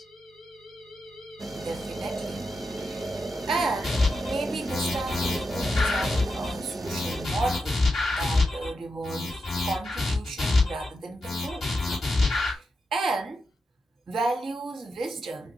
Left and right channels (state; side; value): normal; both; correlation 0.87